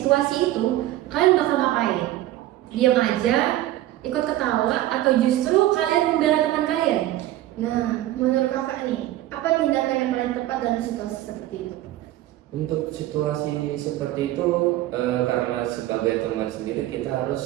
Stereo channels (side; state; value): left; quieter; 14.7 dB